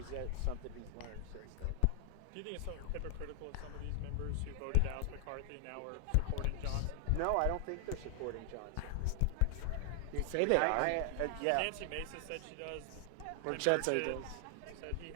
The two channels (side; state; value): both; different; correlation 0.00